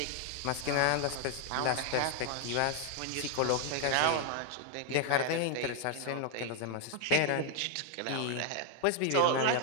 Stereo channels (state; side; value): different; both; correlation 0.00